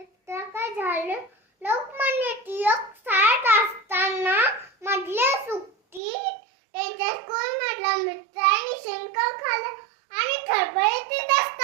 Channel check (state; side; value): drops out; left; at 6.0 s